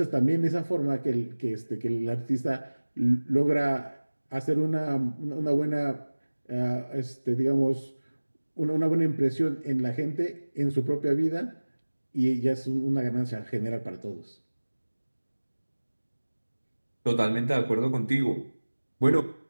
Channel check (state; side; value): inverted; both; correlation -1.00